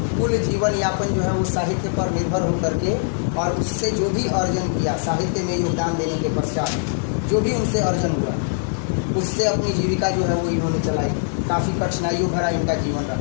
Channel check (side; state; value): right; silent; digital silence